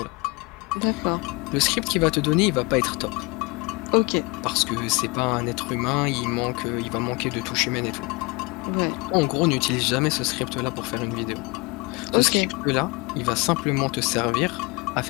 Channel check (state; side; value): quieter; right; 27.5 dB